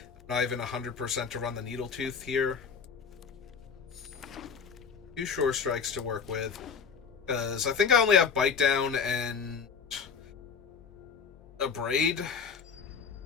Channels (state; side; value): quieter; right; 6.2 dB